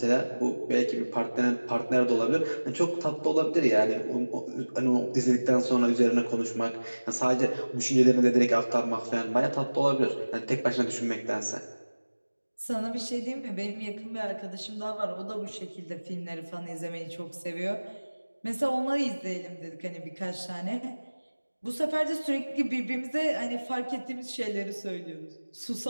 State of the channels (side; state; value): both; inverted; correlation -1.00